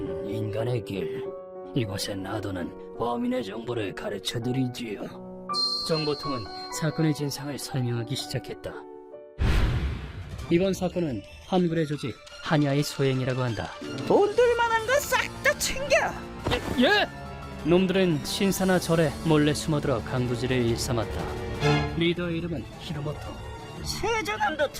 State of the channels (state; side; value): identical; both; correlation 1.00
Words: 인간의 길. 이곳에 놔두는 범인의 정보를 가르쳐드리지요. 정보통은 사건의 진상을 설명하기 시작했다. 이번 사건은 한글의 조직 한야의 소행이라고 한다. 돈들 만한 거 싹 다 챙겨. 예! 놈들은 신사나 절에 몰래 숨어들어 강도질을 일삼았다. 리더의 이름은 히로모토. 세자남도